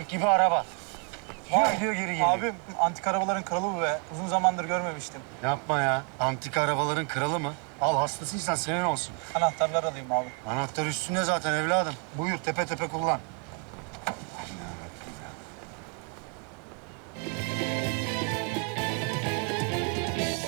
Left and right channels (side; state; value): left; quieter; 36.5 dB